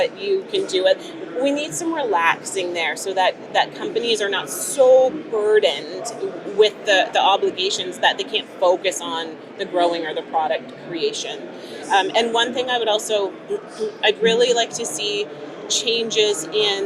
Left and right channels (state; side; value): identical; both; correlation 1.00